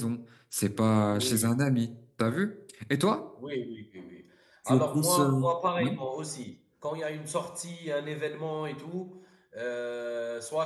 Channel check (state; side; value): identical; both; correlation 1.00